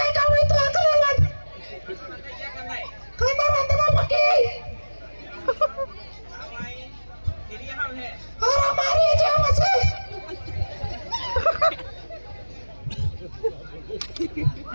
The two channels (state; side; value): inverted; both; correlation -1.00